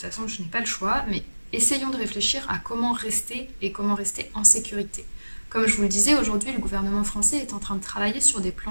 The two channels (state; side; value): inverted; both; correlation -1.00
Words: façon je n'ai pas le choix, mais essayons de réfléchir à comment rester et comment rester en sécurité. » Comme je vous le disais, aujourd'hui, le gouvernement français est en train de travailler sur des